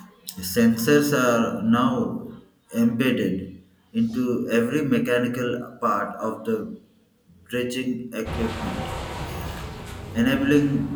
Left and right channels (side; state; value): both; identical; correlation 1.00